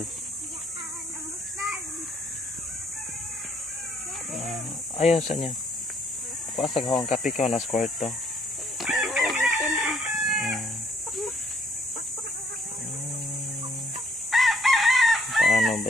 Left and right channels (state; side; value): normal; both; correlation 0.67